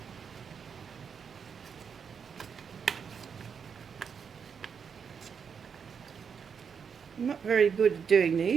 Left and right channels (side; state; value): left; quieter; 6.6 dB